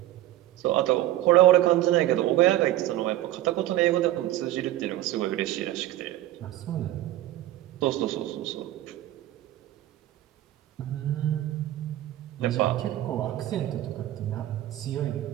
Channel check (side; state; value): left; quieter; 14.5 dB